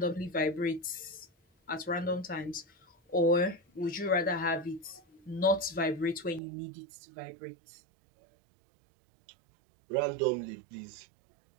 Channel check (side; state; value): left; drops out; at 6.4 s